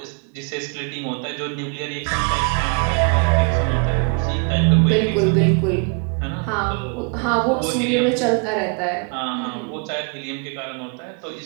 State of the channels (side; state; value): left; quieter; 38.8 dB